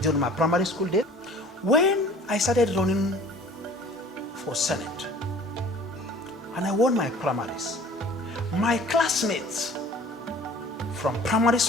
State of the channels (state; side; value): normal; both; correlation 0.48